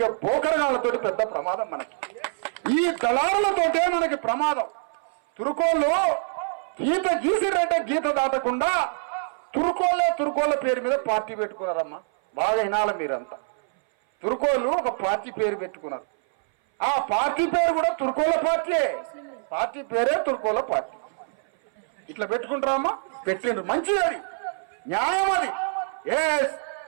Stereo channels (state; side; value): silent; left; 58 dB below the other